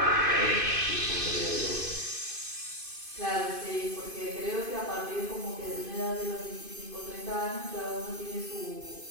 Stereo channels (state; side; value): late; left; 2.5 ms